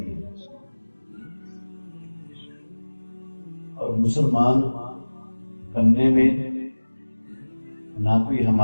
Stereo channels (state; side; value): inverted; both; correlation -1.00